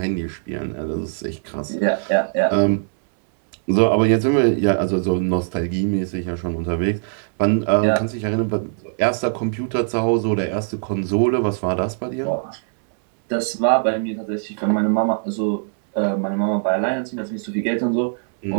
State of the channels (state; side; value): silent; left; 65 dB below the other